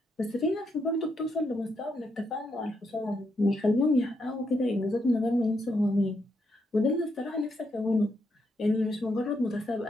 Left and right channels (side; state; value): both; normal; correlation 0.79